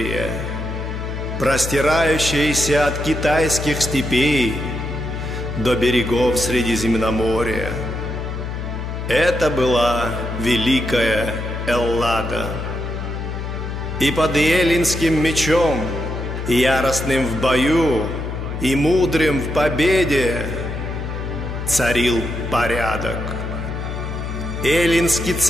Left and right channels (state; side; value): noise; left; hum, 5 dB below the sound